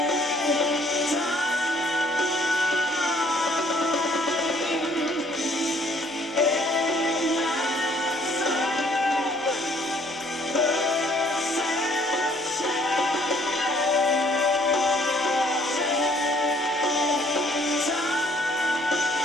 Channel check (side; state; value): both; normal; correlation 0.61